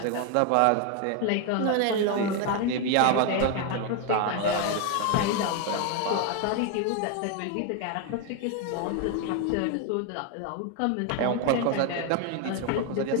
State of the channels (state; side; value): different; both; correlation 0.01